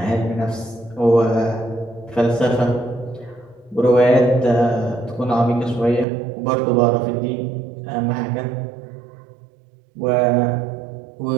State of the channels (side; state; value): left; drops out; at 6.1 s